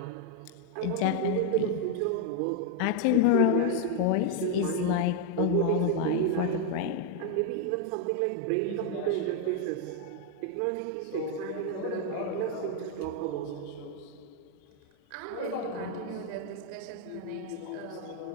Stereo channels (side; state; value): both; different; correlation 0.01